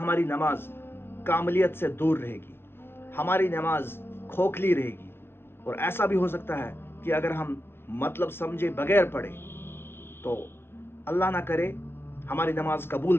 नमाज कामलियत से दूर रहेगी, हमारी नमाज खोखली रहेगी। और ऐसा भी हो सकता है कि अगर हम मतलब समझे बगैर पढ़े तो अल्लाह ना करे हमारी नमाज कबूल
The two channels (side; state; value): right; late; 0.11 ms